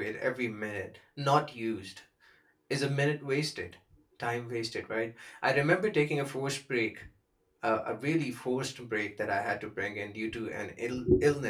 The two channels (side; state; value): both; identical; correlation 1.00